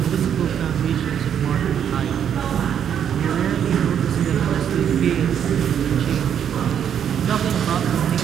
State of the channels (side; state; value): left; quieter; 8.8 dB